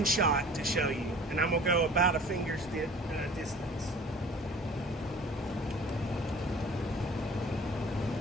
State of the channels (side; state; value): both; normal; correlation 0.46